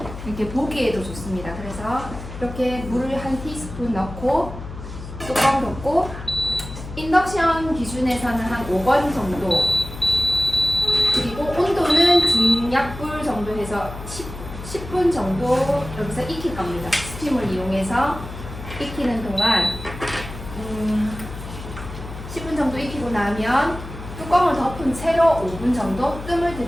이렇게 보기에도 좋습니다. 그래서 이렇게 물을 한 티스푼 넣고 뚜껑 덮고 인덕션 기준에서는 한 5번 정도, 그리고 온도는 중약불 정도 해서 10분 정도 여기서 익힐 겁니다. 스팀을 이용해서 익히는 동안 10분 정도 익히고 나면 뚜껑을 덮은 채로 5분 정도 뜸을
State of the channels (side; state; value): left; noise; hum, 11 dB below the sound